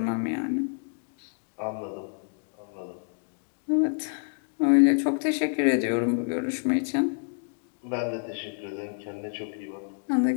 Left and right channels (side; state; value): right; silent; 59 dB below the other